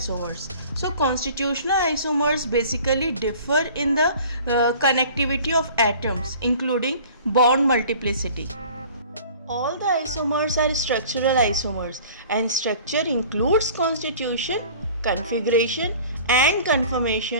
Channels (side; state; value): both; inverted; correlation -0.46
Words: So constitutional isomers basically differ in the connectivity of atoms, including bond multiplicity. All the isomers are structural isomers, and structure includes constitution, configuration and